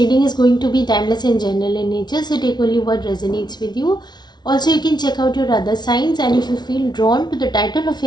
is going to be timeless and general in nature, so take only what resonates with you. Also, you can check out your other signs, and if you feel drawn to the title of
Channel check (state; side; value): late; right; 0.20 ms